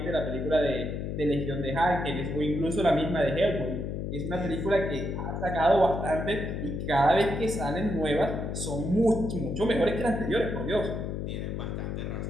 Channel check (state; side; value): noise; left; hum, 3 dB below the sound